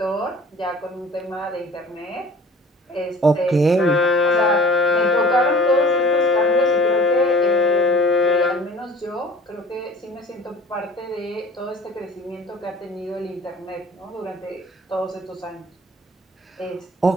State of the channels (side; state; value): both; normal; correlation 0.46